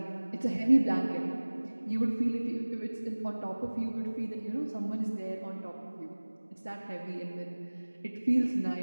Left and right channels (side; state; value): both; inverted; correlation -1.00